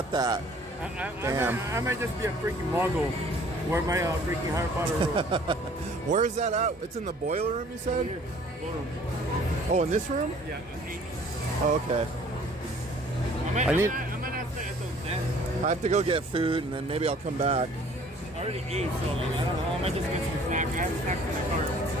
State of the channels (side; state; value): both; normal; correlation 0.54